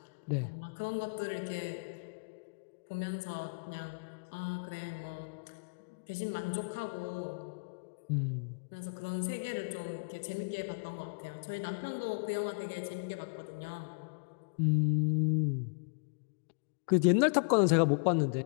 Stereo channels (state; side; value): quieter; right; 39.7 dB